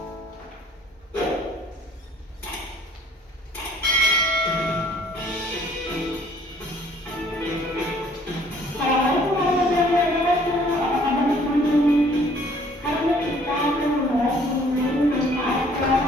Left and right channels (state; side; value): normal; both; correlation 0.58